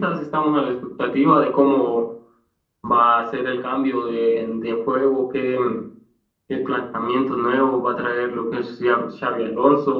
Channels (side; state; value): both; identical; correlation 1.00